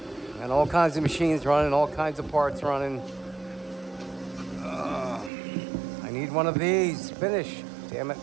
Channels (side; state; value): left; drops out; at 5.3 s